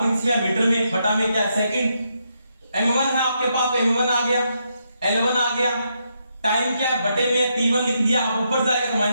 किसमें आया, मीटर में, बटा में क्या है, सेकंड। m1 है आपके पास, m1 आ गया, L1 आ गया, टाइम क्या है, बटे में T1 लिख दिया। अब ऊपर जाएगा तो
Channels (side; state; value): both; inverted; correlation -0.79